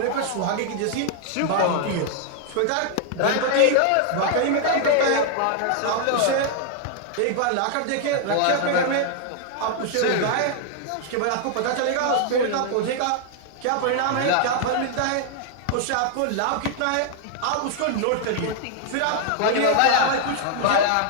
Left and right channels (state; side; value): different; both; correlation 0.00